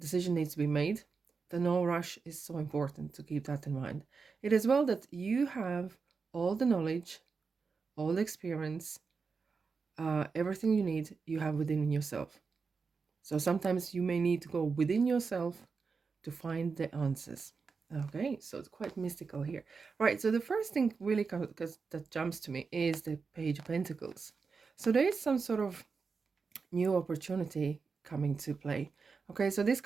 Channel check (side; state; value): left; quieter; 5.0 dB